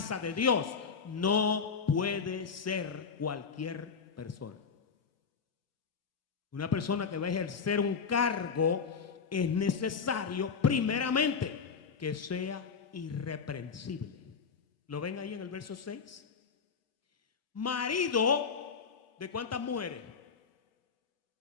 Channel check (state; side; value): quieter; right; 5.8 dB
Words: de Dios no puede ser cualquier persona. Una persona que va a ejercer un cargo es necesario primeramente que sea irreprensible. ¿Lo ven ahí en el verso 6? Marido de ¿cuántas mujeres?